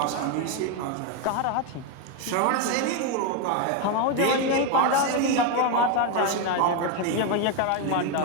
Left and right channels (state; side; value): different; both; correlation 0.02